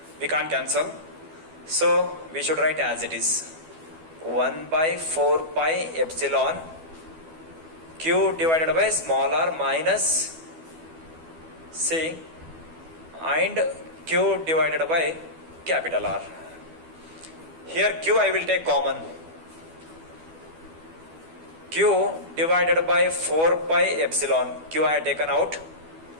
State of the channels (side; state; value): left; late; 12 ms